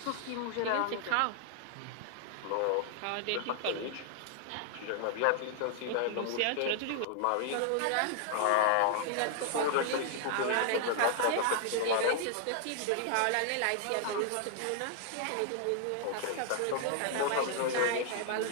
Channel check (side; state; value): both; different; correlation 0.00